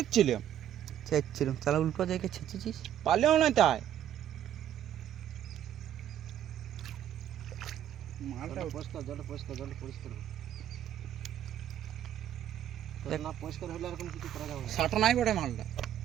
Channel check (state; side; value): quieter; left; 10.8 dB